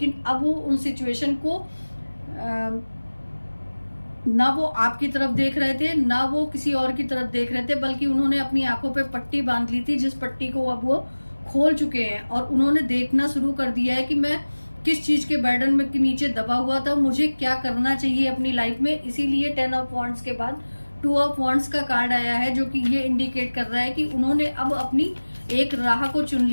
अब वो उन सिचुएशन को ना वो आपकी तरफ देख रहे थे, ना वो किसी और की तरफ देख रहे थे, बल्कि उन्होंने अपनी आंखों पे पट्टी बांध ली थी, जिस पट्टी को अब वो खोल चुके हैं और उन्होंने देखना शुरू कर दिया है कि मैं किस चीज के बर्डन में के नीचे दबा हुआ था, मुझे क्या करना चाहिए अपनी लाइफ में। इसीलिए 10 ऑफ वॉन्ड्स के बाद 2 ऑफ वॉन्ड्स का कार्ड आया है, जो कि ये इंडिकेट कर रहा है कि उन्होंने अब अपनी एक राह को चुन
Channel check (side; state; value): both; inverted; correlation -1.00